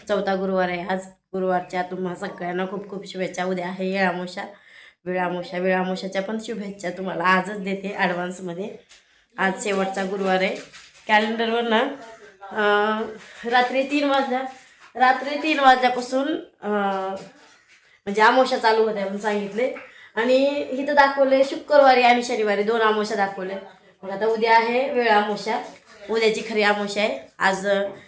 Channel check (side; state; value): both; identical; correlation 1.00